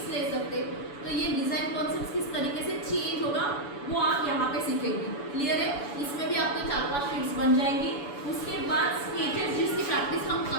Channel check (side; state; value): right; late; 7.0 ms